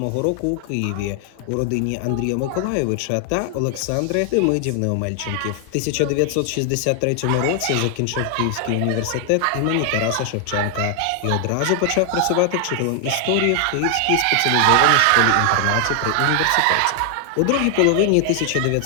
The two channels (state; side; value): different; both; correlation 0.00